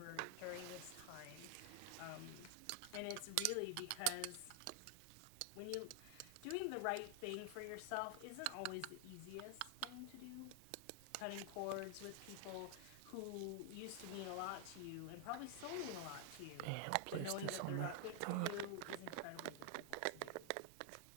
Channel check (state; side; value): different; both; correlation 0.00